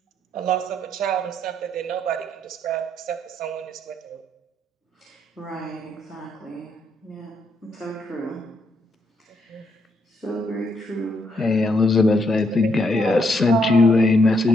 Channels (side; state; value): both; normal; correlation 0.75